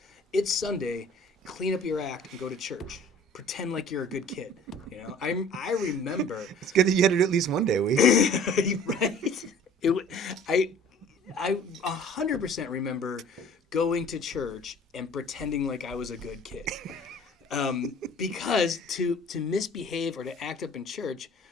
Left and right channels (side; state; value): both; normal; correlation 0.49